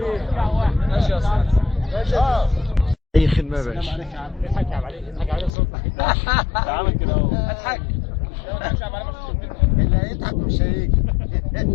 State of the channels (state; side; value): drops out; right; at 5.5 s